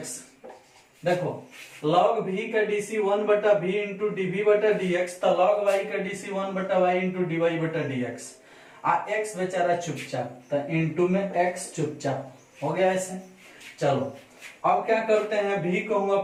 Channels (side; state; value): both; identical; correlation 1.00